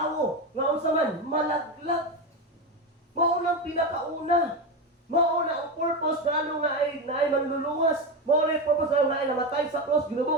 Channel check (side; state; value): both; normal; correlation 0.15